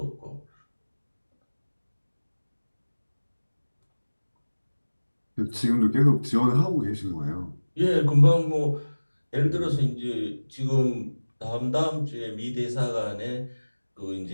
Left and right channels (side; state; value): both; inverted; correlation -1.00